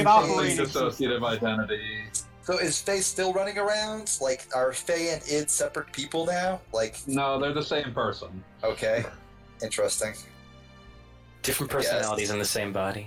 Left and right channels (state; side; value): identical; both; correlation 1.00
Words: an an operating dissociative identity. So is Faye still running around? Like, are Faye and Id separate people now? Like, No, they're the same person. okay, interesting. Different personalities in the same